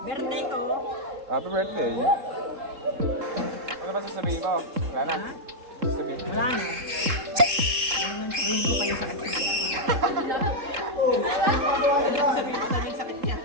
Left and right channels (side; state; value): left; late; 3.7 ms